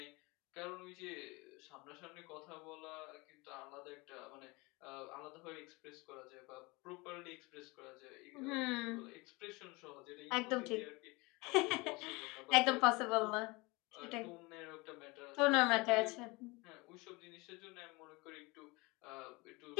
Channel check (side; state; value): right; quieter; 24.9 dB